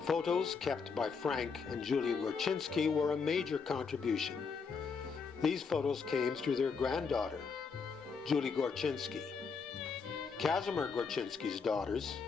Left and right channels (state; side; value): quieter; right; 5.4 dB